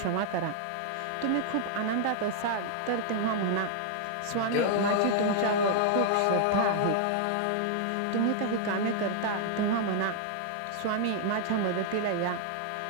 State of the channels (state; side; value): different; both; correlation 0.00